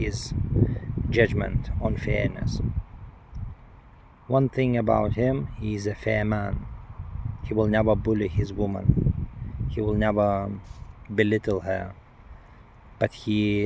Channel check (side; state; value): both; identical; correlation 1.00